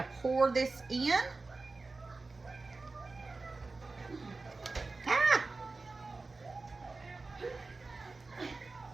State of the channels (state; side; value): quieter; left; 3.6 dB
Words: pour this in.